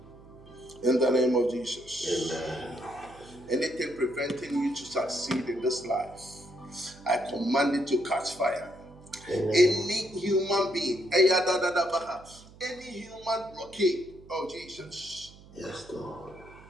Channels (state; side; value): noise; right; hum, 22 dB below the sound